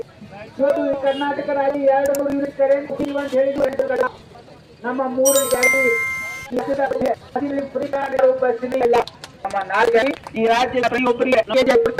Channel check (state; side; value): identical; both; correlation 1.00